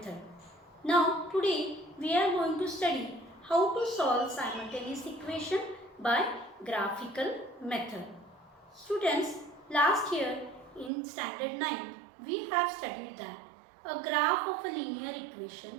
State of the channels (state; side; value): drops out; left; at 10.9 s